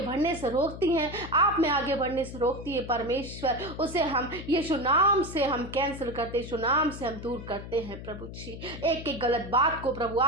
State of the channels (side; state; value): left; noise; hum, 11 dB below the sound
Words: बढ़ने से रोकती है, आप में आगे बढ़ने से रोकती है परमेश्वर, उसे हम यीशु नाम से हम कैंसिल करते, यीशु नाम से हम दूर करते हैं प्रभु जी। एक एक गलत बात को प्रभु